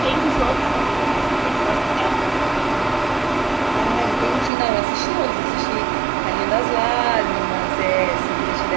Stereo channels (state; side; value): drops out; left; at 4.5 s